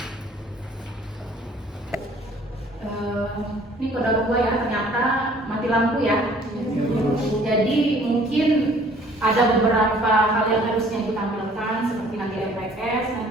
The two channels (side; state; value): both; normal; correlation 0.56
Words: Ini kode gua ya, ternyata mati lampu ya. Jadi mungkin ada beberapa hal yang harusnya ibu tampilkan, seperti nanti RPS.